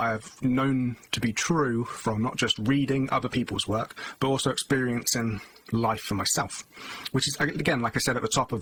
I have known to be true from not just reading other people's work, but also experiencing life for myself, which is, again, like I said at the top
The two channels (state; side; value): identical; both; correlation 1.00